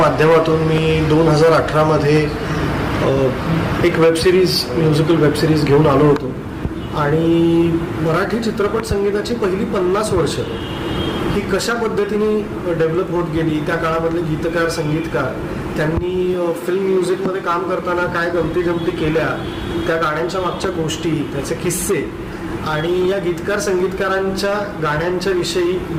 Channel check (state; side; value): identical; both; correlation 1.00